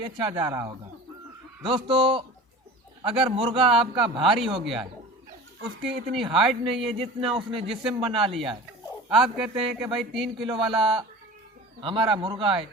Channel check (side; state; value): both; normal; correlation 0.37